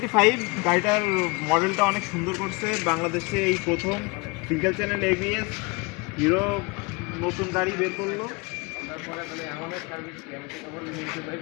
গাড়িটার মডেলটা অনেক সুন্দর করছে, বাংলাদেশে এই প্রথম সিঙ্গেল চ্যানেল এবিএস হিরো নতুন গাড়ি বের করলো।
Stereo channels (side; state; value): right; quieter; 27.7 dB